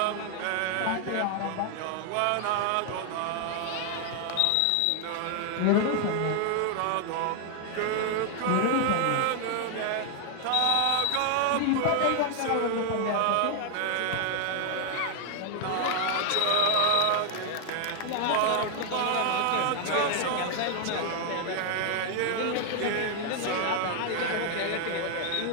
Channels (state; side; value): different; both; correlation 0.00